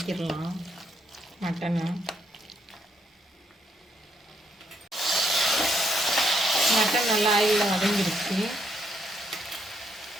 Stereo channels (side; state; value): both; normal; correlation 0.74